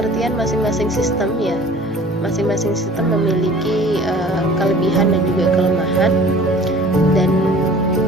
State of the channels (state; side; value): normal; both; correlation 0.47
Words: masing-masing sistem ya. Masing-masing sistem memiliki kelebihan dan juga kelemahan dan